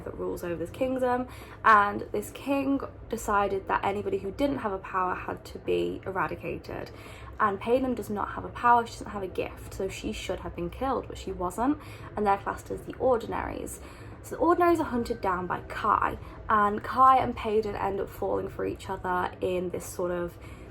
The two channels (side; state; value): both; identical; correlation 1.00